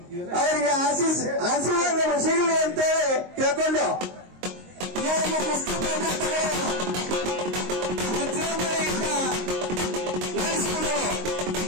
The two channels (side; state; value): left; late; 22 ms